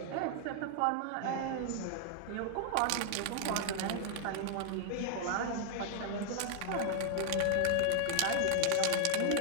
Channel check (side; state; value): both; different; correlation 0.00